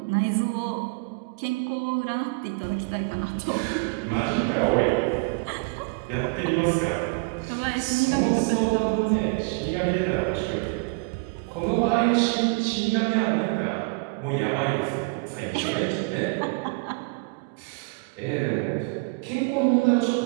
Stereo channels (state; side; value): quieter; left; 30.3 dB